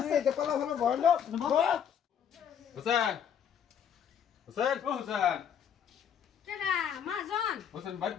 এই যে কলা ফলা ভরলো হোসেন হোসেন ও হোসেন কেডা মাজন হোসেন বাড়ি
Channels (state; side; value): quieter; right; 8.3 dB